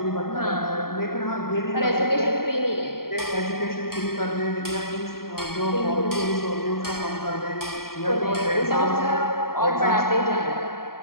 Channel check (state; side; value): late; right; 0.93 ms